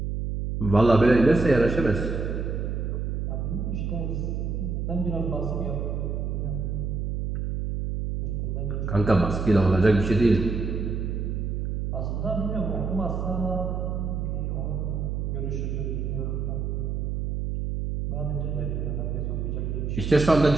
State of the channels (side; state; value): right; noise; hum, 2 dB below the sound